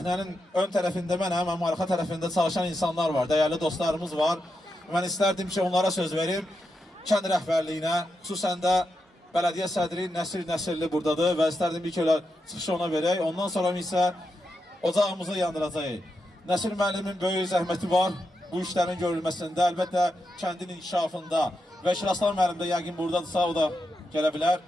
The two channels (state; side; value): normal; both; correlation 0.86